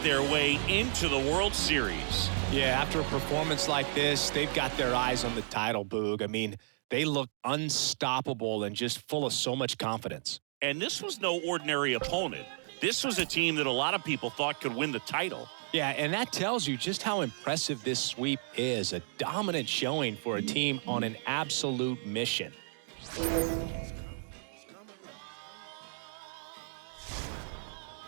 their way into the World Series. Yeah, after a performance like this, they've got their eyes on the title, Boog. I mean, they look unstoppable and just full of so much confidence. And this was no ordinary opponent. This was a team that a lot of people thought could win the title. Yeah, and that tells you just how impressive this sweep is. A dominant showing for a team on an absolute mission.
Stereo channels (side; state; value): left; silent; digital silence